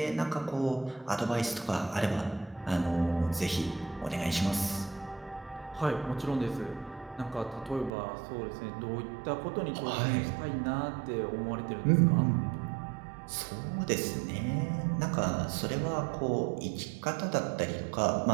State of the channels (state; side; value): drops out; left; at 7.9 s